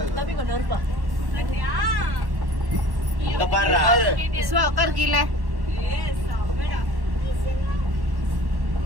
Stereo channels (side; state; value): left; late; 1.1 ms